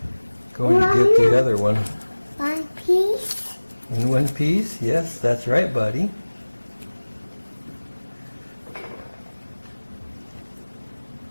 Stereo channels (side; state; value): both; inverted; correlation -1.00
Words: going to get the other one. One piece? In one piece? Yes, that's right, buddy.